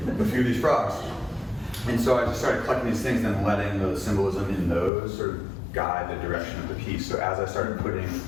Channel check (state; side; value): drops out; right; at 4.9 s